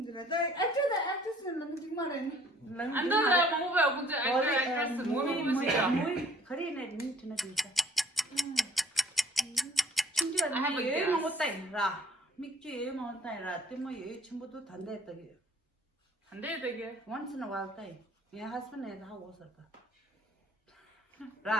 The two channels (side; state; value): both; normal; correlation 0.57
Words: actress는 너무 정말에. 안 돼. movie actress movie movie kare ne ni tuna 진짜. 진짜 나 여행 먹었다 이라. 맥주 여행 먹었다 이라. 때문에 여행 전부도 단대했다게. 단대했다게. Once in a while day. My husband is how was it?